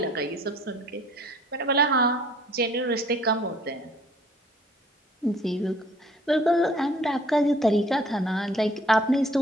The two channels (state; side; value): normal; both; correlation 0.56